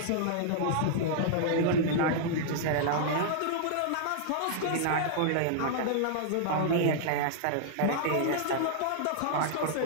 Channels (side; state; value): both; different; correlation -0.01